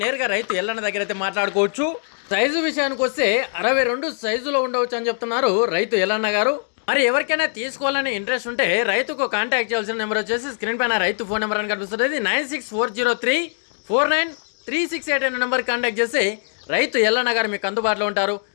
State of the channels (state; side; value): silent; right; 61 dB below the other